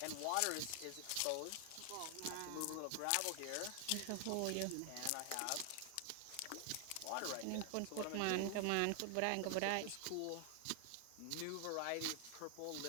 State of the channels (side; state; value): both; different; correlation 0.00